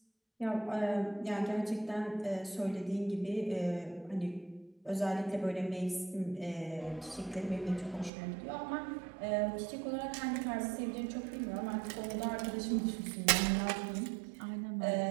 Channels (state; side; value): drops out; left; at 8.1 s